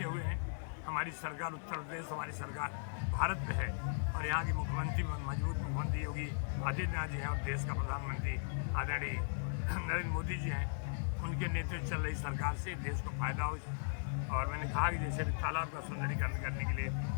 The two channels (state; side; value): silent; right; digital silence